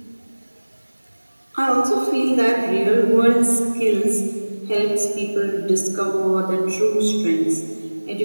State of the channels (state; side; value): inverted; both; correlation -1.00